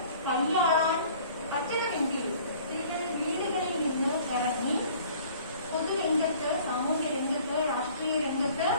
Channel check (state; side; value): inverted; both; correlation -0.51